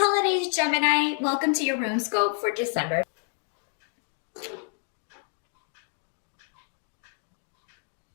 Gemini. Welcome to your room scope for December.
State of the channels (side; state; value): right; silent; 59 dB below the other